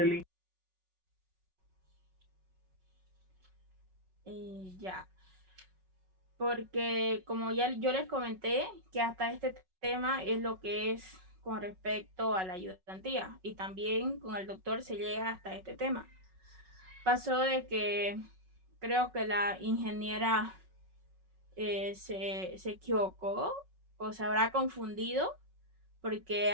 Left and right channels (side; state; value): left; late; 5.4 ms